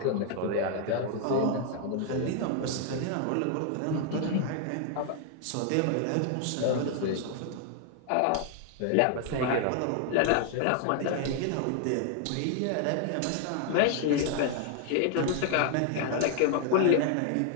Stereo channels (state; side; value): different; both; correlation 0.00